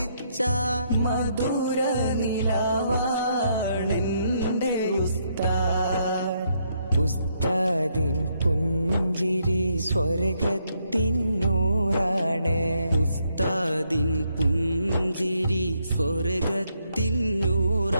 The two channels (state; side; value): inverted; both; correlation -0.75